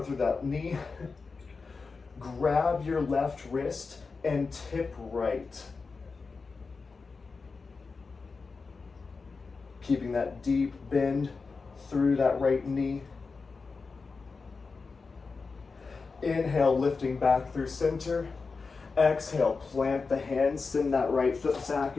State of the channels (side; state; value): right; quieter; 4.5 dB